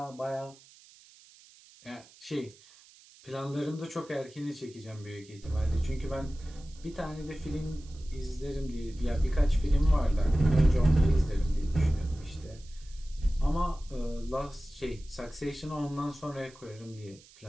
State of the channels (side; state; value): right; noise; hiss, 24 dB below the sound